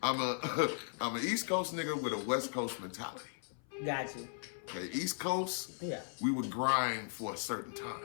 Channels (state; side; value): silent; right; 53 dB below the other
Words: I'm a East Coast nigga with a West Coast mentality. Gotcha. Okay, East Coast, Yeah. we would grind for a certain